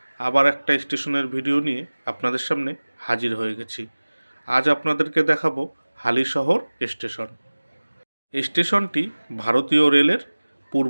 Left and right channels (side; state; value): both; inverted; correlation -1.00